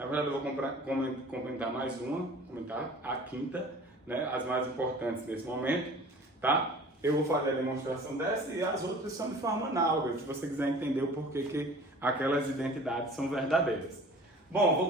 verdade, eu vou comentar mais uma, comentar a quinta, né, as mais importantes nesse momento, tá? Eu vou fazer a demonstração dessa e as outras são de forma análoga, se você quiser entender o porquê que aquelas identidades são verdadeiras. Bom, vou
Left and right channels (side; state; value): both; normal; correlation 0.45